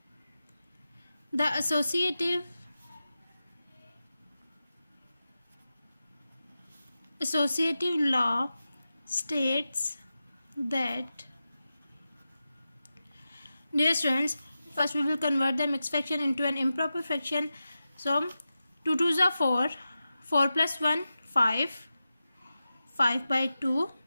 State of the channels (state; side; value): inverted; both; correlation -0.92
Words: the associative law states that, dear students, first we will convert the mixed fraction into an improper fraction. So 2 2s are 4, 4 plus 1 5, 5 by 2,